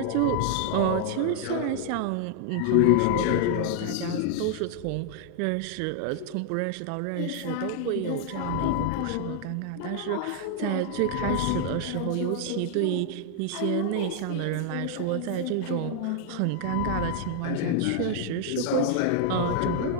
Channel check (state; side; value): different; both; correlation 0.00